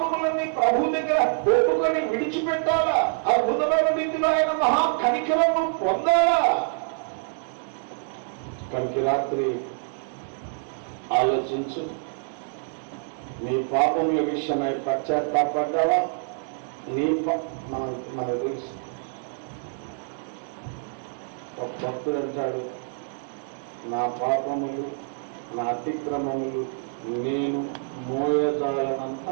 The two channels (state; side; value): silent; left; digital silence